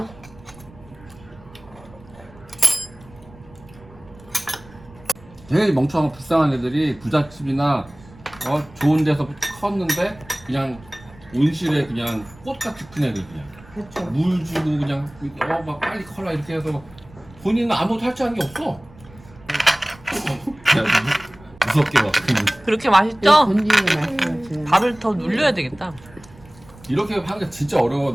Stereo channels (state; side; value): noise; right; rumble, 23 dB below the sound